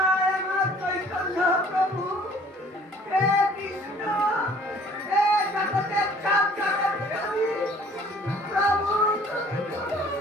আমার চৈতন্য প্রভু হে কৃষ্ণ হে জগতের সব জগৎ প্রভু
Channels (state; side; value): normal; both; correlation 0.54